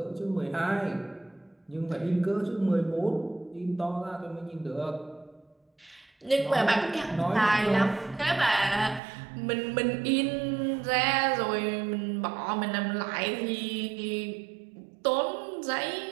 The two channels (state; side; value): drops out; left; at 9.0 s